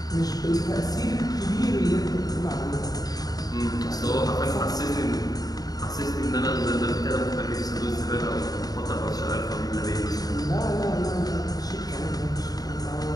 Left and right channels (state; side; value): late; right; 0.18 ms